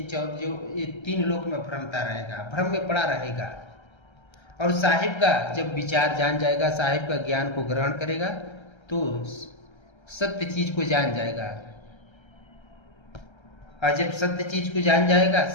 3 लोक में भ्रमता रहेगा, भ्रम में पड़ा रहेगा। और साहिब का जब विचार जान जाएगा, साहिब का ज्ञान को ग्रहण करेगा, तो सत्य चीज को जान जाएगा। और जब सत्य चीज को जान जाएगा,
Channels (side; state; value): right; late; 1.3 ms